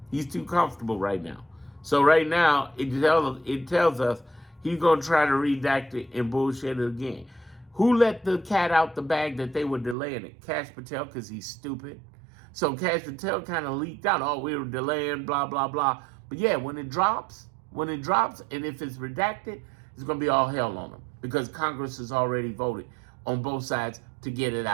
He's too comfortable right now. So right now, it tells us he's going to try to redact it and bullshit it again. Who let the cat out the bag that they were delaying it? Kash Patel, because he's stupid. So Kash Patel kind of leaked out, oh, we were delaying, blah, blah, blah. But yeah, when it drops, and if it's redacted, it's going to be all hell on them because Congress has already voted on both sides to get it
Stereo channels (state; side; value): drops out; left; at 10.0 s